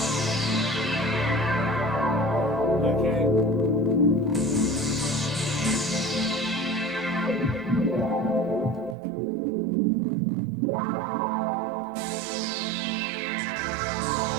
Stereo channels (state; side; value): drops out; left; at 9.0 s